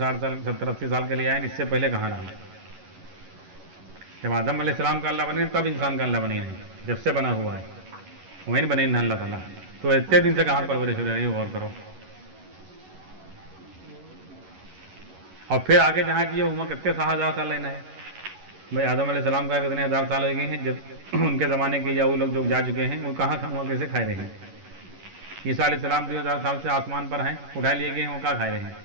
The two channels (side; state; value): left; late; 11 ms